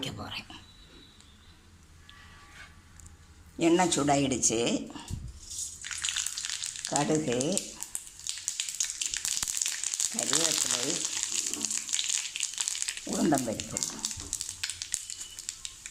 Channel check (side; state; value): both; identical; correlation 1.00